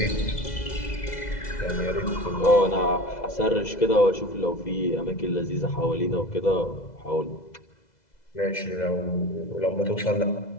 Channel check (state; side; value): late; right; 2.0 ms